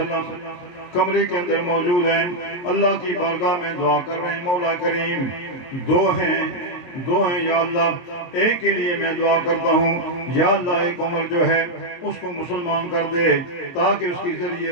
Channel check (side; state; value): right; late; 22 ms